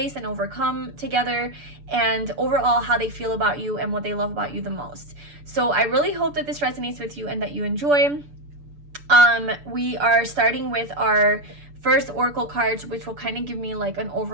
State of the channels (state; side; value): late; left; 6.9 ms